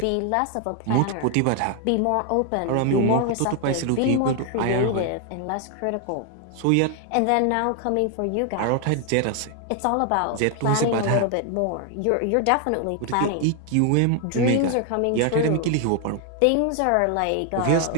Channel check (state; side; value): different; both; correlation 0.00